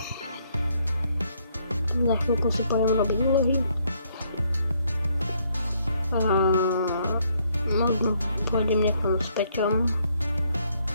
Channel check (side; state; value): both; inverted; correlation -0.70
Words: Za chvíľku si pôjdem robiť úlohy. Možno pôjdem niekam s Peťom